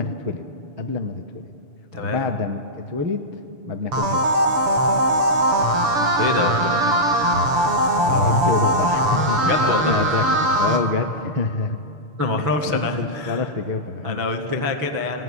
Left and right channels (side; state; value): left; late; 7.0 ms